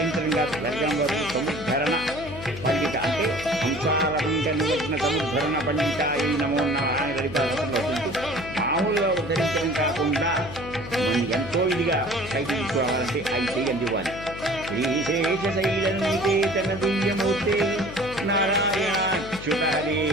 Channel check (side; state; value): left; noise; hum, 12 dB below the sound